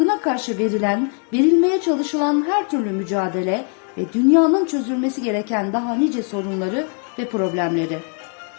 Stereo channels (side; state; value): right; quieter; 39.2 dB